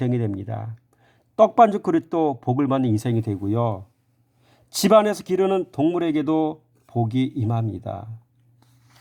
됩니다. 떡반죽 그릇도 복을 받는 인생이 되고요. 집안에서 기르는 동물에게도 복이 임합니다.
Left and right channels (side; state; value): both; identical; correlation 1.00